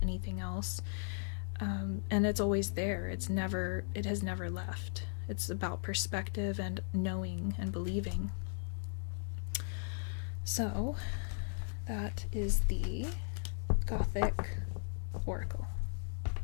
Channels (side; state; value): right; silent; digital silence